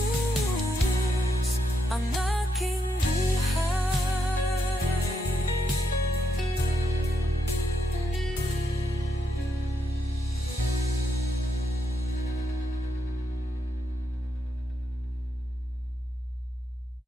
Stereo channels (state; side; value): normal; both; correlation 0.80